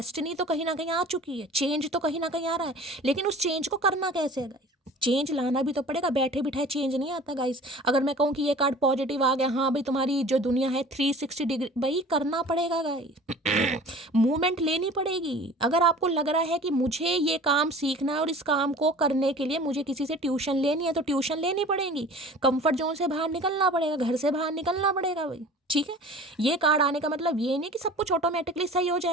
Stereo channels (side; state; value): both; normal; correlation 0.43